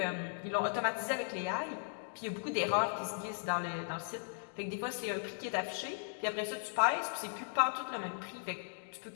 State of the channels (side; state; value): right; silent; digital silence